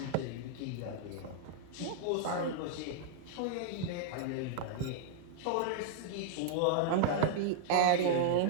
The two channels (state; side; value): different; both; correlation -0.01